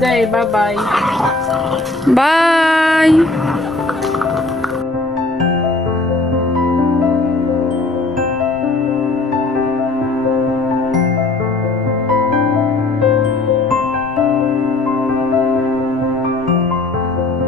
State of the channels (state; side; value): quieter; right; 3.1 dB